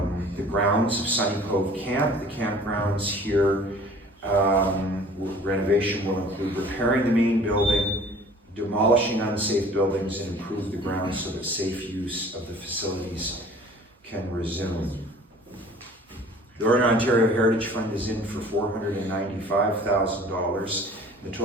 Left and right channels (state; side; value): normal; both; correlation 0.48